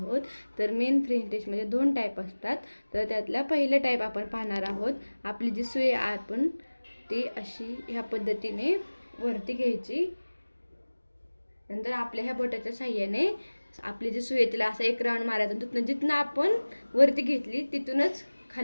तर मेन फ्रेंच स्टिचमध्ये 2 टाईप असतात. तर त्यातला पहिला टाईप आपण पाहणार आहोत. आपली जी सुई आपण ती अशी ह्या पद्धतीने वरती घ्यायची. नंतर आपल्या ह्या बोटाच्या साहाय्याने आपली जी सुई तिला असा एक राऊंड मारायचा. तिथून जिथनं आपण वरती घेतली तिथूनच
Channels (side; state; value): both; inverted; correlation -1.00